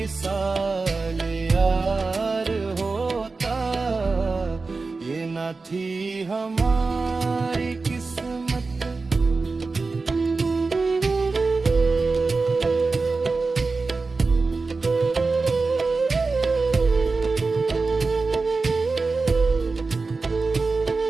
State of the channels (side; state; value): left; quieter; 4.0 dB